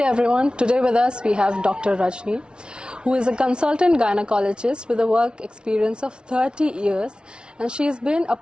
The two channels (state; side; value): late; left; 0.056 ms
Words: Today with us we have Dr. Rajini, who is a consultant gynecologist with a work experience of 30 years, and she has been a